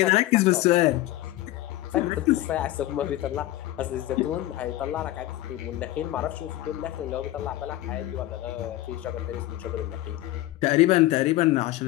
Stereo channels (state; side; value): quieter; right; 16.0 dB